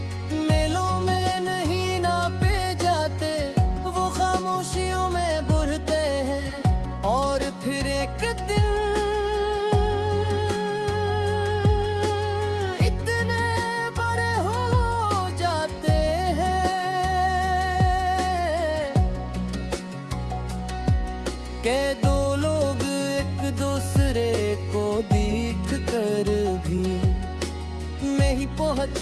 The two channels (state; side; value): identical; both; correlation 1.00